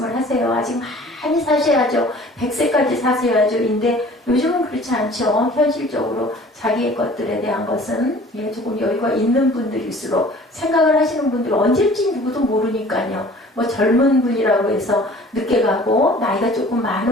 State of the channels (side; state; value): both; normal; correlation 0.49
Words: 하세요? 아직 많이 사셔야죠. 100세까지 사셔야죠. 인데 요즘은 그렇지 않죠. 현실적으로 자기의 것들에 대한 것은 조금 여유가 있는 분들일수록 생각을 하시는 분들 언제쯤 누구도 모르니까요. 뭐 젊은 분이라고 해서 늦게 가고 나이가 조금